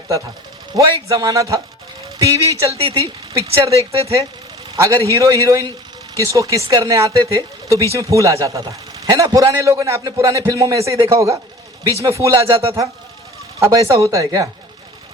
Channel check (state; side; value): normal; both; correlation 0.43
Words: था। वो एक ज़माना था, टीवी चलती थी, पिक्चर देखते थे, अगर हीरो हीरोइन किसको किस करने आते थे तो बीच में फूल आ जाता था, है ना। पुराने लोगों ने, आपने पुराने फिल्मों में ऐसे ही देखा होगा, बीच में फूल आ जाता था। अब ऐसा होता है क्या?